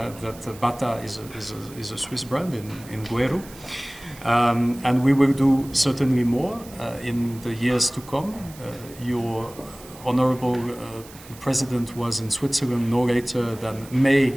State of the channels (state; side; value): noise; right; hiss, 20 dB below the sound